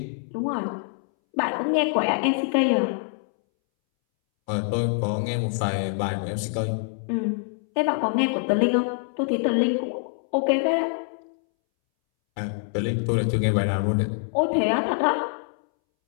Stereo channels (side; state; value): right; silent; 62 dB below the other